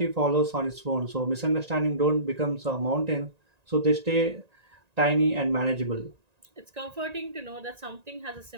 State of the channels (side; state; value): left; late; 1.9 ms